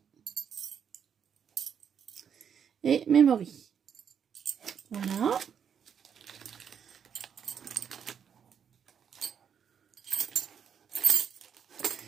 et Memory. Voilà.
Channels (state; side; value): quieter; left; 7.7 dB